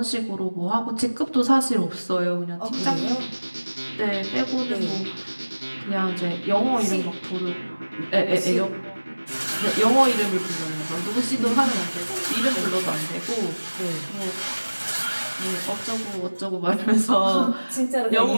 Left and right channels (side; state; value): both; inverted; correlation -1.00